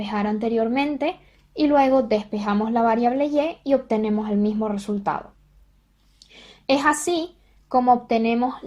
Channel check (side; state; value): both; identical; correlation 1.00